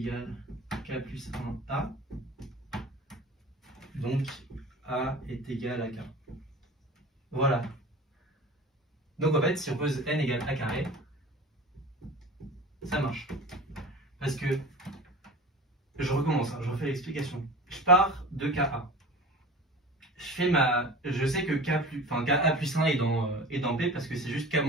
K plus 1A. Donc A est égal à K. Voilà. Donc en fait, si on pose N égale A carré, ça marche. Parce que, je recommence, je refais l'explication. Je pars de KA. Je sais que KA plus 1 est dans P parce que c'est juste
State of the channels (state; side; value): normal; both; correlation 0.37